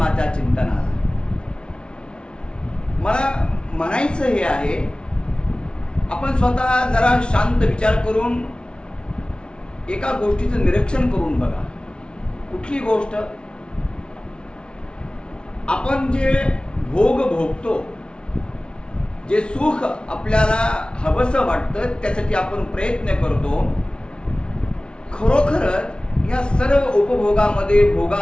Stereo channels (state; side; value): late; right; 0.056 ms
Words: चिंतनाला. मला म्हणायचं हे आहे, आपण स्वतः जरा शांत विचार करून एका गोष्टीचं निरीक्षण करून बघा. कुठली गोष्ट? आपण जे भोग भोगतो, जे सुख आपल्याला हवंसं वाटतं, त्यासाठी आपण प्रयत्न करतो. खरोखरच या सर्व उपभोगामध्ये